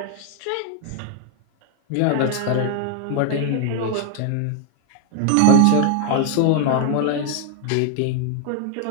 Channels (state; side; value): different; both; correlation 0.00